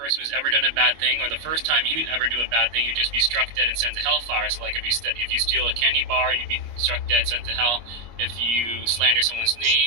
who's ever done a bad thing, or the first time you ever do a bad thing, you'd just be struck dead and sent to hellfire. So, like, if you steal a candy bar, you'd be struck dead, sent to hell. If you slander someone's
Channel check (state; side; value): late; left; 25 ms